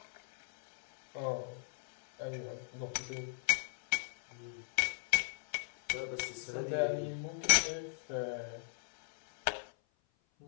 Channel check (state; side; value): silent; right; 53 dB below the other